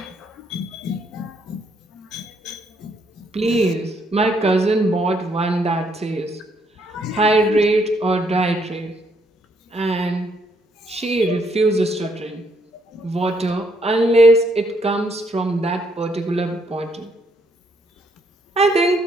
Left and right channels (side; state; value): both; normal; correlation 0.72